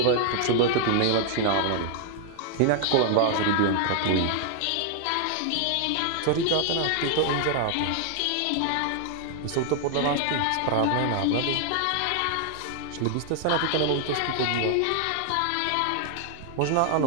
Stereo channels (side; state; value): both; different; correlation 0.00